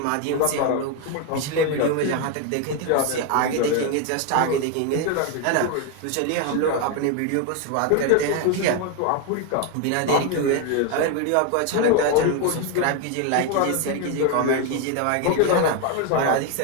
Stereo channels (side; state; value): both; different; correlation 0.01